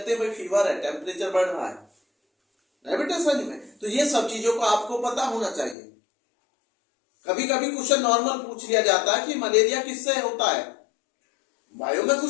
हैं भाई फीवर है, टेम्परेचर बढ़ रहा है डायबिटीज में। तो ये सब चीजों को आपको पता होना चाहिए। कभी कभी क्वेश्चन नॉर्मल पूछ लिया जाता है कि मलेरिया किससे होता है, बायो में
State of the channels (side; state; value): right; drops out; at 5.8 s